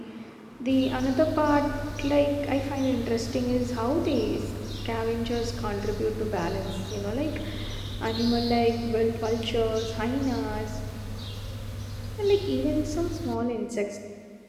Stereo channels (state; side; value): identical; both; correlation 1.00